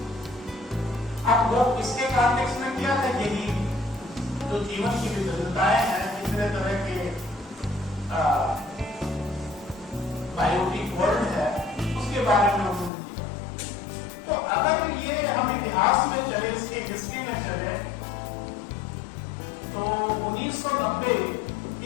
अब लोग इसके कॉन्टेक्स्ट में क्या कहेंगे, जो जीवन की विभिन्नताएं हैं, कितने तरह के बायोटिक वर्ल्ड है, उसके बारे में उन्होंने किया। तो अगर ये हम इतिहास में चले, इसके हिस्ट्री में चले, तो 1990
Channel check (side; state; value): right; drops out; at 12.9 s